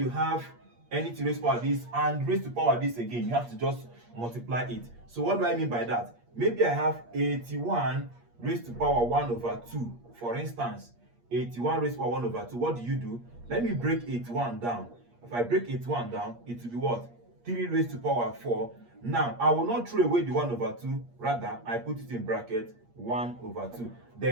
have anything raised to power this and raised to power this again, you have to just multiply it. So what do I mean by that? Maybe I have 81 raised to power 1 over 2. For instance, 81 raised to power 1 over 2. What do? Let me break 81 down. If I break 81 down, it will be what? 3 raised to power 4. Now, I will not throw away the 1 over 2. Rather, I put it in bracket 1 over 2.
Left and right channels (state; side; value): late; left; 8.5 ms